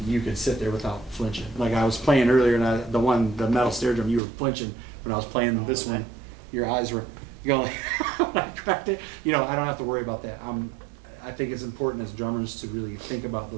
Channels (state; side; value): drops out; left; at 4.2 s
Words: you could sit there without flinching. Like I was playing earlier, and the metal snare drum, you were flinching when I was playing this one. Your eyes were going when I cracked it. I don't have to worry about that. I think it's important as drummers to really think about